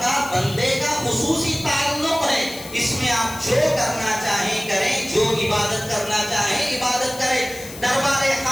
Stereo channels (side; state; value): left; noise; hiss, 14 dB below the sound